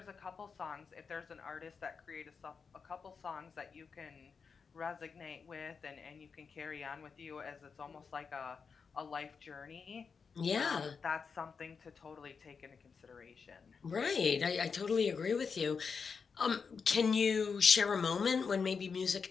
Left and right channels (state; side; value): quieter; right; 5.6 dB